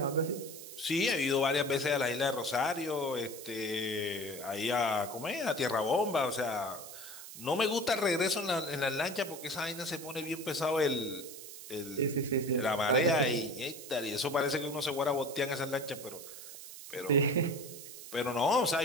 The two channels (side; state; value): right; noise; hiss, 13 dB below the sound